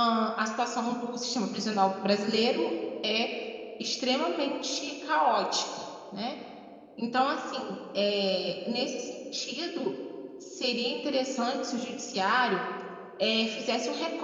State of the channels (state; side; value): identical; both; correlation 1.00